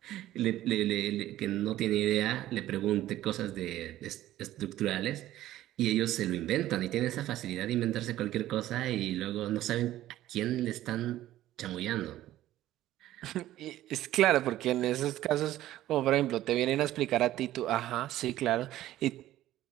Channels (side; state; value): left; quieter; 14.2 dB